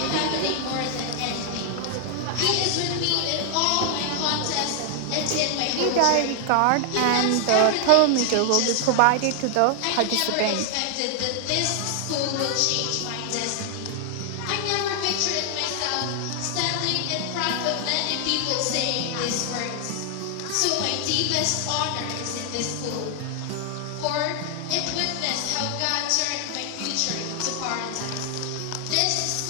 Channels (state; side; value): different; both; correlation 0.00